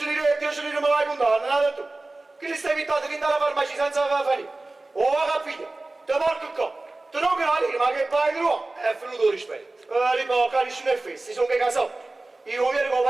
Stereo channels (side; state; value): left; quieter; 3.0 dB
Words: lire me l'hai contato, non hai detto? Che li stai invitando che andare alla farmacia senza farina? Oh, va capito? Te porco qua. Te non che la lira, ma che fai di nuovo? È venuto rispetto. Lipo, cari sono e festi, sono che casati. Io viene con il